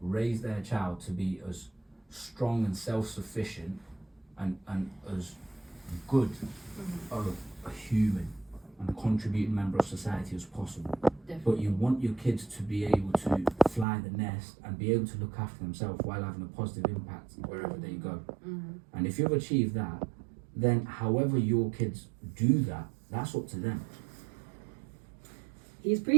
raise their child to be as strong and self-sufficient and as good of a human and contributing member of society as possible. Definitely. But you want your kids to be able to fly the nest and be able to look after themselves while having a positive impact wherever they go. And if you've achieved that, then however your kids do that, that's up to them. He's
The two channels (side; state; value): left; drops out; at 13.9 s